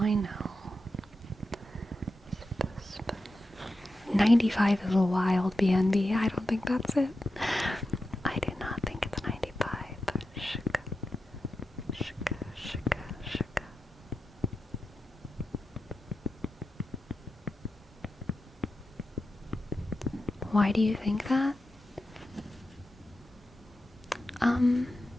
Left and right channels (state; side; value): normal; both; correlation 0.90